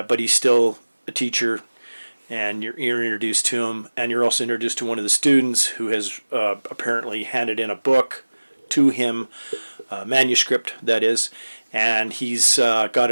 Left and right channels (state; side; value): inverted; both; correlation -1.00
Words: he's still a teacher. and you're introduced to him, and you're also introduced to one of the students who has apparently handed in a book to him, manuscript that is, and he's got